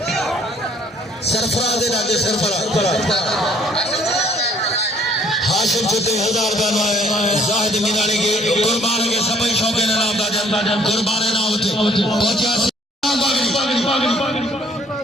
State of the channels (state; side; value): normal; both; correlation 0.61